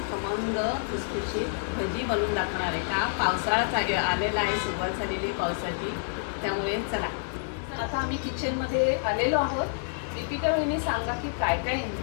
खमंग खुसखुशीत भजी बनवून दाखवणार आहे। का पावसाळा आलेला आहे, सुरुवात झालेली पावसाची, त्यामुळे चला आता आम्ही किचनमध्ये आलेलो आहोत। दीपिका वहिनी सांगा की काय काय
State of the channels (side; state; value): right; silent; 59 dB below the other